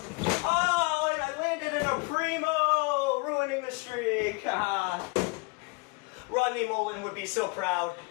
Oh, and I landed in a primo, ruining the streak. Rodney Mullen would be so proud.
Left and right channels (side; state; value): right; quieter; 28.9 dB